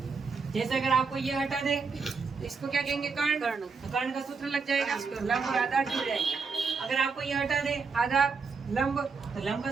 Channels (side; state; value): left; quieter; 4.9 dB